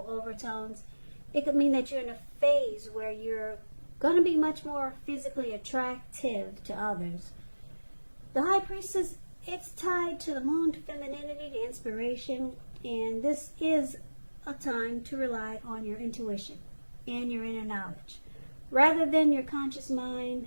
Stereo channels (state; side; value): inverted; both; correlation -1.00